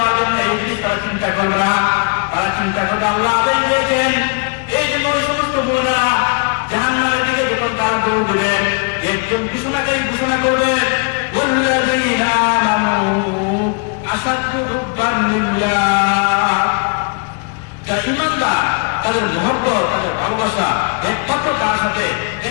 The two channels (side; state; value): right; quieter; 37.1 dB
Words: জন্য, এই জিনিস তারা চিন্তা করবে না। তারা চিন্তা করবে আল্লাহ আদেশ দিয়েছেন। এই জন্য ওই সমস্ত মুমিনরা জাহান্নামের দিকে যখন তারা দৌড় দেবেন, একজন ঘোষণাকারী ঘোষণা করবেন ওয়াল্লাযীনা আমানু আশাদ্দু হুব্বান লিল্লাহ। যারা ঈমানদার তাদের মহব্বত, তাদের ভালোবাসা একমাত্র কার সাথে?